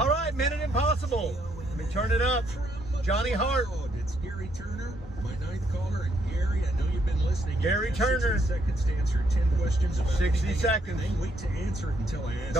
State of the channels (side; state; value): both; normal; correlation 0.72